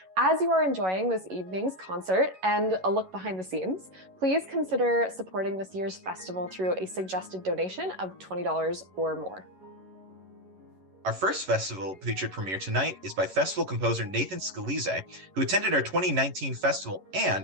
As you are enjoying this evening's concert and a look behind the scenes, please consider supporting this year's festival through a suggested donation of $20 or more. Our first festival featured premiere tonight is by festival composer Nathan Scalise, who attended our 2019 festival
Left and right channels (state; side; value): late; left; 11 ms